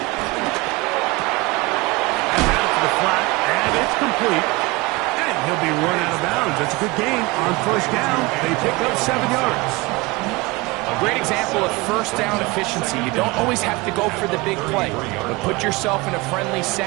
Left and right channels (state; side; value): quieter; left; 23.5 dB